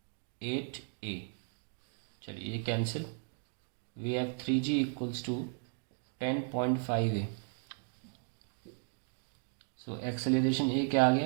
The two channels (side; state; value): left; silent; 54 dB below the other